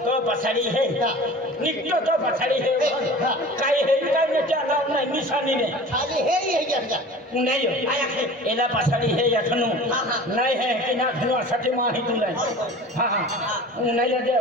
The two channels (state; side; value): normal; both; correlation 0.40